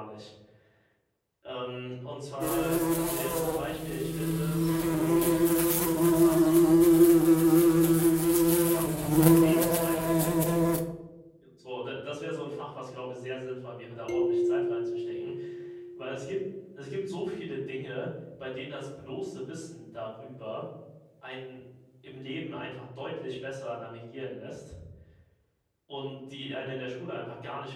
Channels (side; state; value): both; identical; correlation 1.00